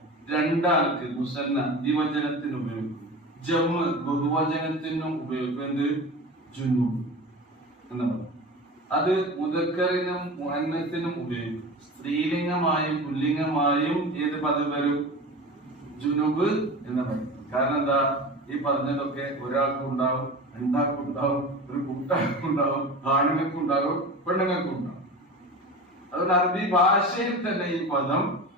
2 ആൾക്ക് മുസന്ന ദ്വിവചനത്തിന് ഉപയോഗിക്കും, ജമ്മ് ബഹുവചനത്തിനും ഉപയോഗിക്കും. എന്ത്, ജുനൂബ് എന്ന് പറയും. അത് മുദക്കറിനും മുഅന്നസിനും ഉപയോഗിക്കും. സ്ത്രീലിംഗമായും പുല്ലിംഗമായും ഏത് പദം വരും, ജുനൂബ് എന്ന് പറയും. കാരണം എന്താ, ഈ പറഞ്ഞതൊക്കെ ഒരാൾക്കും ഉണ്ടാവും, 2 ആൾക്കും ഉണ്ടാവും, ഒരു കൂട്ടാൾക്കും ഉണ്ടാവും, ആണുങ്ങൾക്കും ഉണ്ടാവും, പെണ്ണുങ്ങൾക്കും ഉണ്ടാവും. അതുകൊണ്ട് അറബി ഭാഷയിൽ തന്നെ ഈ പദം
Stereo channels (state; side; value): normal; both; correlation 0.32